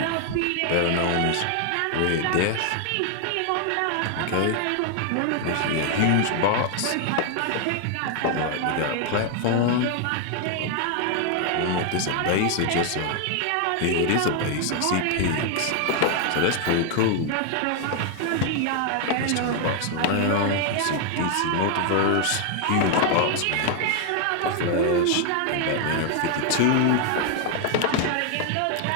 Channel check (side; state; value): both; different; correlation 0.00